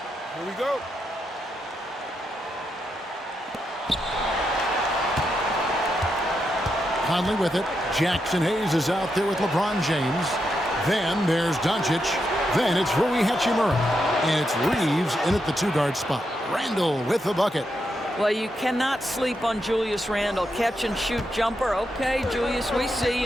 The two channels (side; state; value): both; normal; correlation 0.83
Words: Here we go. Conley with it. Jackson Hayes is out there with LeBron James. Then there's Doncic. Then it's Rui Hachimura. And it's Reeves in at the 2-guard spot. Randle with the bucket. Well, you cannot sleep on Julius Randle. Catch and shoot jumper. Okay, Julius, we see